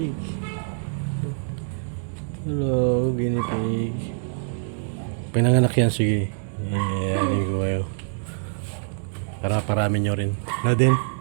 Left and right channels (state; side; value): silent; left; digital silence